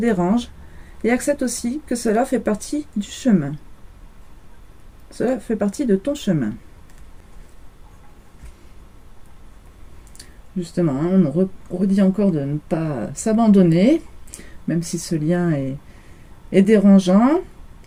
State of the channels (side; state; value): both; identical; correlation 1.00